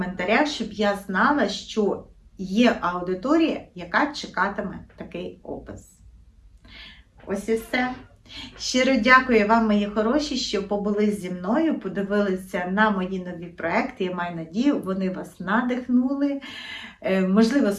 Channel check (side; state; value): both; identical; correlation 1.00